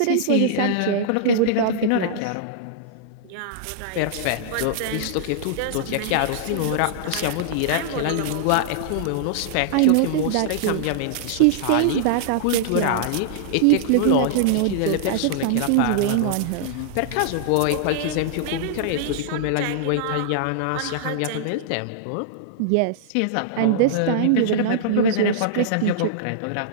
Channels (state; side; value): different; both; correlation -0.02